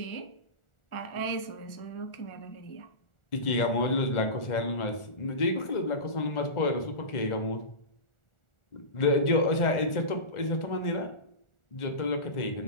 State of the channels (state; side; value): late; right; 1.4 ms